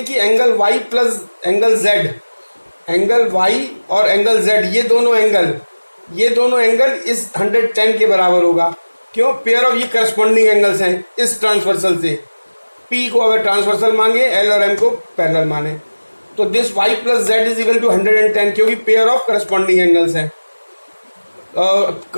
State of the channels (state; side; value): inverted; both; correlation -1.00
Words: कि angle Y plus angle Z, angle Y और एंगल जेड, ये दोनों एंगल इस 110 के बराबर होगा। क्यों? पेयर ऑफ ये करस्पॉन्डिंग एंगल्स हैं इस ट्रांसवर्सल से। पी को अगर ट्रांसवर्सल मांगे, एल और एम को पैरेलल माने, तो this Y plus Z is equal to 110, क्योंकि पेयर ऑफ करस्पॉन्डिंग एंगल्स हैं,